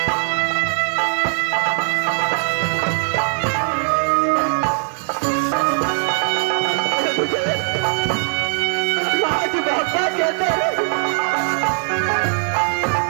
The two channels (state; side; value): silent; left; digital silence